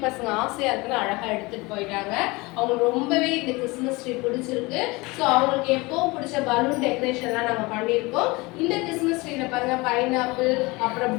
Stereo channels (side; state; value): right; quieter; 23.9 dB